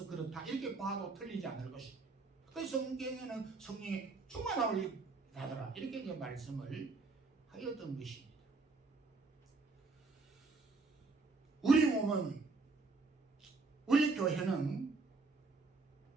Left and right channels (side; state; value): left; quieter; 3.9 dB